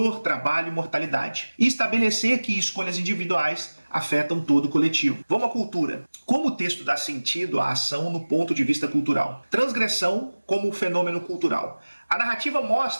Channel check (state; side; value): inverted; both; correlation -1.00